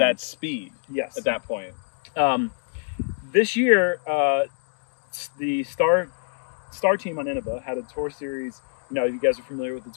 speed. Yes. At that point. This year, the Star team on Innova had a tour series. You know, you guys are familiar with the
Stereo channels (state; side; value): silent; right; 61 dB below the other